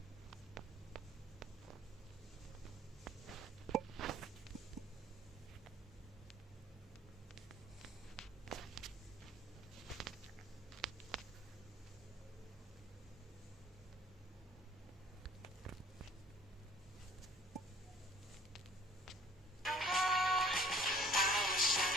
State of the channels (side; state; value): both; normal; correlation 0.53